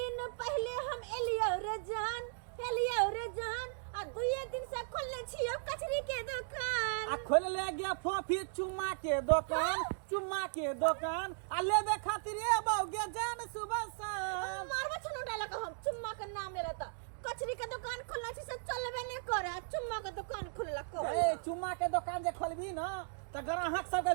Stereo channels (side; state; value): left; silent; digital silence